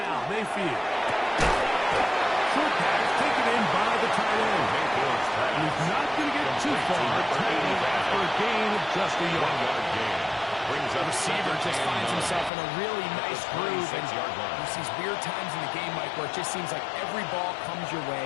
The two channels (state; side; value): drops out; right; at 12.5 s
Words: Mayfield. Short pass taken in by the tight end. He's not going to get too far. Taking after a gain of just a yard. The receiver just finds himself in a really nice groove, and there's these weird times in the game, Mike, where it just seems like every ball comes your way,